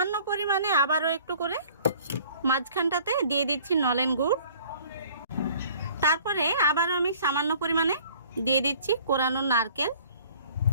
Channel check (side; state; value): both; inverted; correlation -0.53